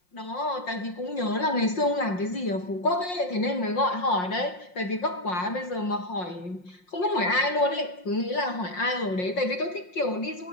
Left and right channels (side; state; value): right; late; 5.6 ms